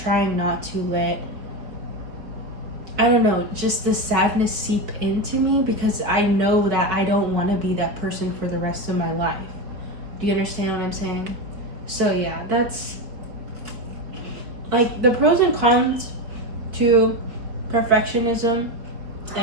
not to let, I don't know, just the sadness seep into me, because I know that I don't want to be that person for the rest of my life. Do you understand what I'm saying? So yeah, that's like the pros and cons to perfectionism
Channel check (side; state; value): left; late; 4.4 ms